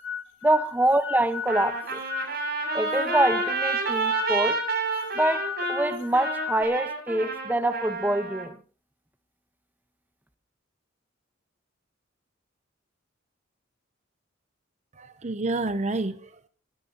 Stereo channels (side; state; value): both; normal; correlation 0.56